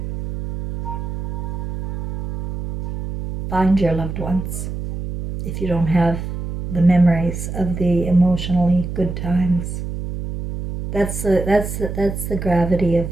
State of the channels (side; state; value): right; noise; hum, 6 dB below the sound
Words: find your loved ones if you don't have the memories of the emotionally good times. That's the gravity of